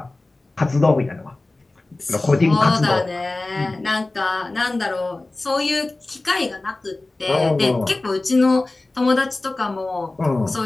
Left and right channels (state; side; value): quieter; right; 3.0 dB